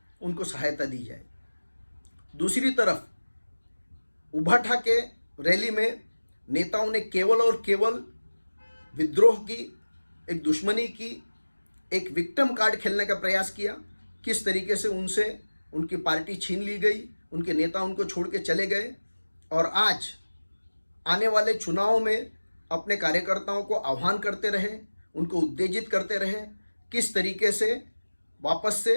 उनको सहायता दी जाए। दूसरी तरफ उभा ठाके रैली में नेताओं ने केवल और केवल विद्रोह की, एक दुश्मनी की, एक विक्टिम कार्ड खेलने का प्रयास किया। किस तरीके से उनसे उनकी पार्टी छीन ली गई, उनके नेता उनको छोड़ के चले गए और आज आने वाले चुनाव में अपने कार्यकर्ताओं को आह्वान करते रहे, उनको उत्तेजित करते रहे, किस तरीके से वापस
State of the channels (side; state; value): both; inverted; correlation -1.00